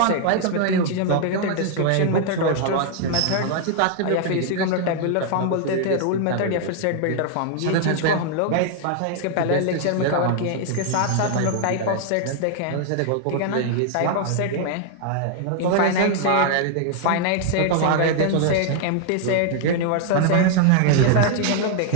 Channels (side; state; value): both; different; correlation 0.00